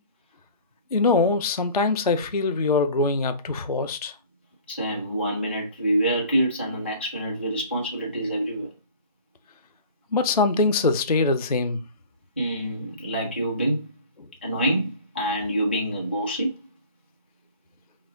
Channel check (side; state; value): both; inverted; correlation -0.43